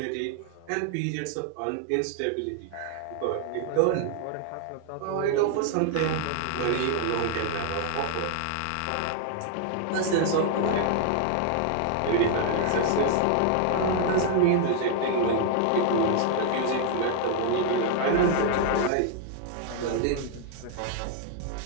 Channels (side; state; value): both; different; correlation 0.00